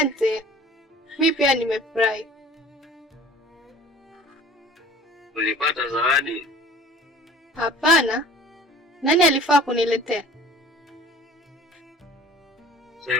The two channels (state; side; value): normal; both; correlation 0.47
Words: Mimi pia nimefurahi. Ulipata zawadi? Hapana. Nani alifaa kuniletea?